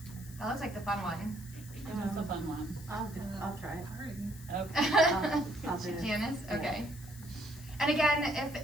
That looks like the fun one. That's the fun one. I'll try it. Okay. I'll do it. Janice? Yeah. Okay. And again,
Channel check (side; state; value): left; noise; hiss, 18 dB below the sound